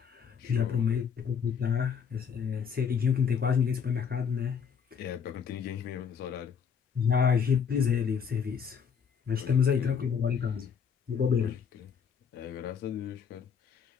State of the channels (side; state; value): right; quieter; 6.8 dB